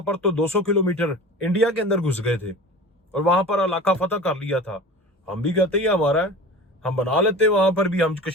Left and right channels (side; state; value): both; normal; correlation 0.36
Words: पर तो 200 किलोमीटर इंडिया के अंदर घुस गए थे और वहां पर इलाका फतह कर लिया था। हम भी कहते ही हमारा है, हम बना लेते, वहां पर भी हम